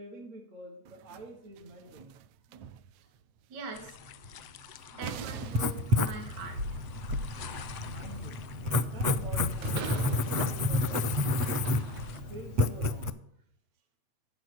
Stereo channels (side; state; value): left; late; 8.2 ms